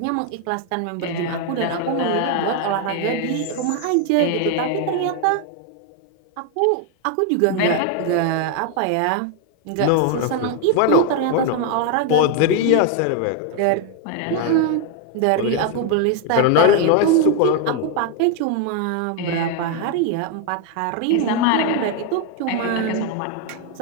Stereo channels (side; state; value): both; different; correlation 0.01